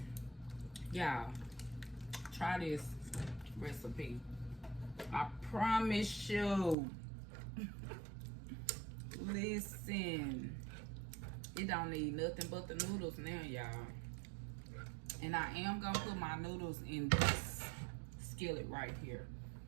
Y'all, try this recipe. I promise you. Listen, it don't need nothing but the noodles now, y'all. And I am gonna put my noodles in this skillet right here.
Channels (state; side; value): drops out; left; at 6.8 s